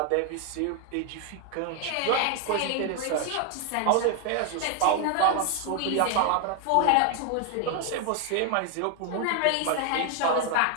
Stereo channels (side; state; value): both; different; correlation 0.00